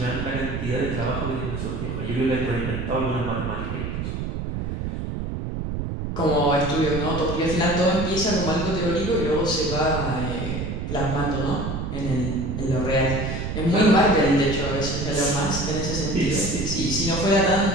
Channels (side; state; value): right; noise; rumble, 4 dB below the sound